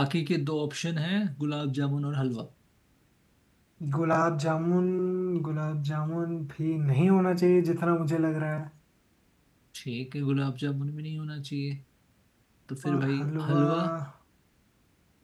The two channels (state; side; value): identical; both; correlation 1.00